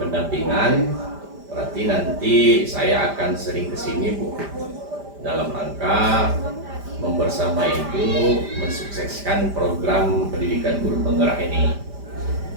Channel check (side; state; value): left; late; 5.0 ms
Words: pendampingan. Berarti nanti saya akan sering kesini Bu, dalam rangka membersama Ibu mensukseskan program pendidikan guru penggerak ini.